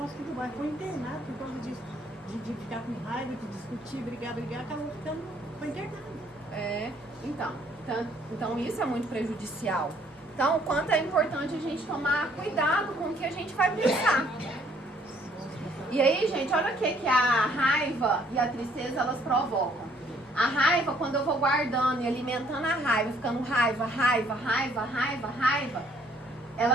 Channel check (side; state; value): both; normal; correlation 0.63